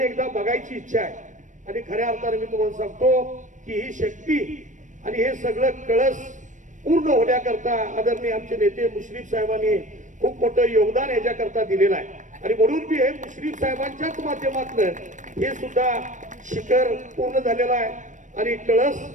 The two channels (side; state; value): left; late; 0.37 ms